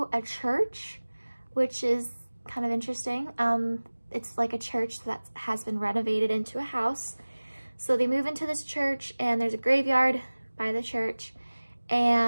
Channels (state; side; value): inverted; both; correlation -1.00